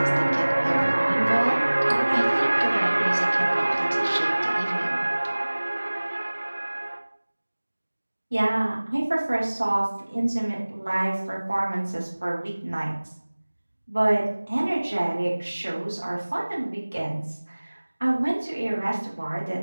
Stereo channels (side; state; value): both; inverted; correlation -1.00